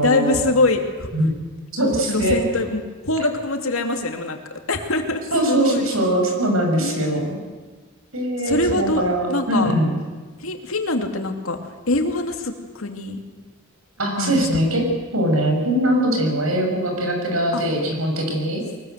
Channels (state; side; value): normal; both; correlation 0.14